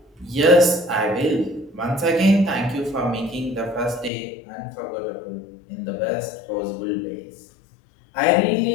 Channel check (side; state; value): right; drops out; at 4.1 s